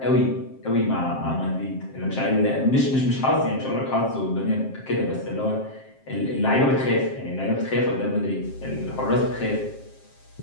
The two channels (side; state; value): right; late; 7.5 ms